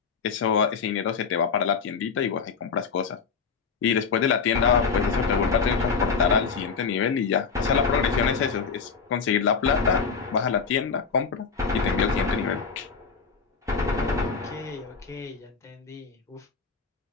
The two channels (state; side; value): quieter; right; 5.5 dB